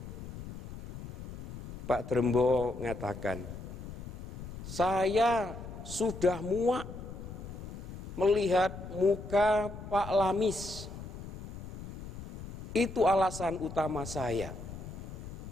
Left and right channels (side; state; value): left; noise; rumble, 10 dB below the sound